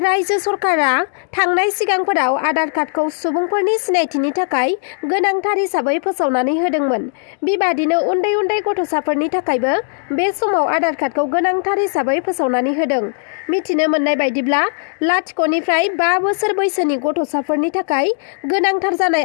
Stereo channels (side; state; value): right; silent; digital silence